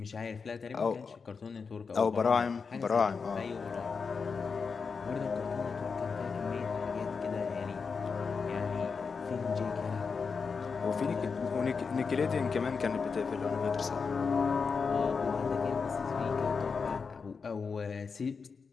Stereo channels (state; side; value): quieter; right; 5.3 dB